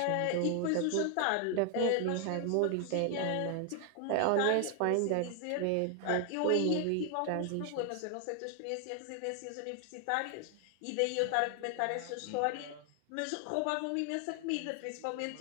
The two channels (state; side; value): different; both; correlation 0.00